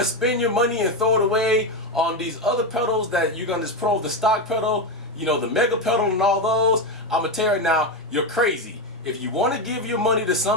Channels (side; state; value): both; normal; correlation 0.12